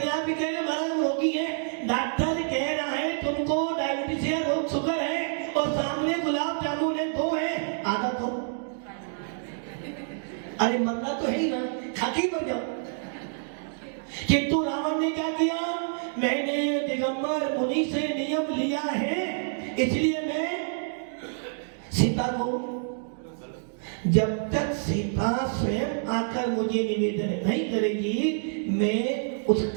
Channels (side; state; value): left; silent; digital silence